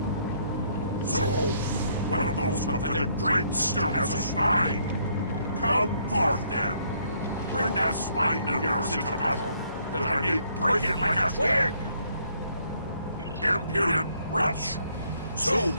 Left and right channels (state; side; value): inverted; both; correlation -0.68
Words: So, one of those pathetic drakes still has a spine. Come forth, then. Bring that spine of yours into battle, that I may break it like a twig! Impudent wretch! Soon